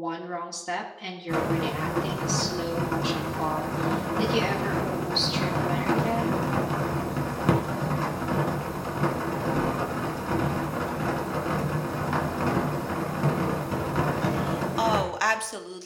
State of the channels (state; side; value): identical; both; correlation 1.00